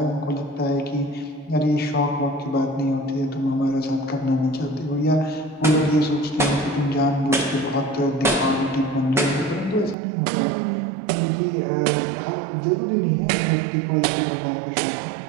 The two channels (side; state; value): left; drops out; at 10.0 s